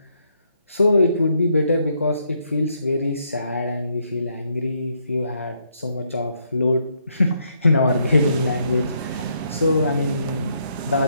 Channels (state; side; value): inverted; both; correlation -0.74